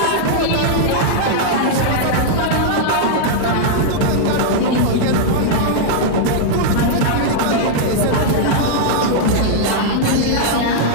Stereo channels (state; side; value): different; both; correlation -0.01